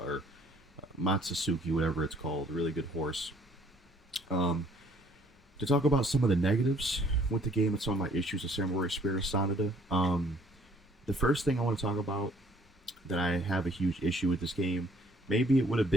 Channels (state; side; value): normal; both; correlation 0.61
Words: Matsusuki, whatever it's called. A really good horse. To talk about some of the negatives with the game and some of my issues with Samurai Spirit of Sanada, the first thing I want to talk about that I have a huge issue with this game, maybe it would have